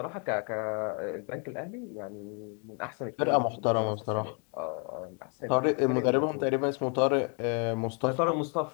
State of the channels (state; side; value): quieter; right; 38.4 dB